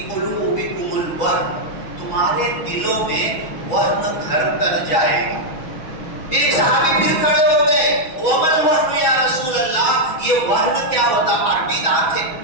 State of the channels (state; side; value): late; right; 6.2 ms